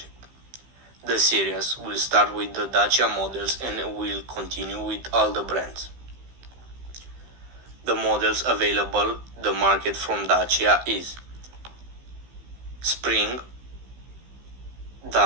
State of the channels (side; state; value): left; late; 15 ms